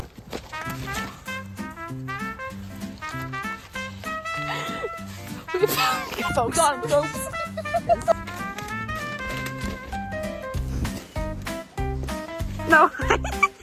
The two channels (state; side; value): identical; both; correlation 1.00